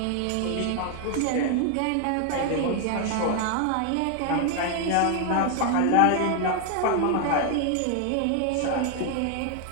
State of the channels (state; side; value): different; both; correlation 0.00